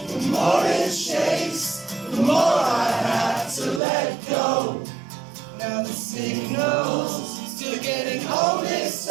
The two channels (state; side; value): drops out; left; at 3.8 s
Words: the more it shakes, the more I have to let go. Now the signals still getting all mixed